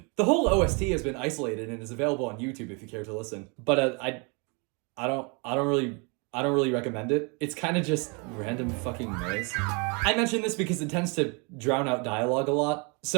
The whole OST has been isolated and is available on YouTube if you care to listen. But I don't really recommend it. It's kind of just random fucking noise. I mention this because it tends to drown out dialogue a lot,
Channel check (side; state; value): left; quieter; 32.6 dB